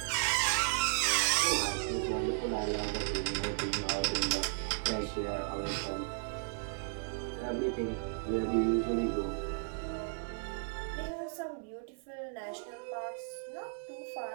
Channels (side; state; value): left; silent; digital silence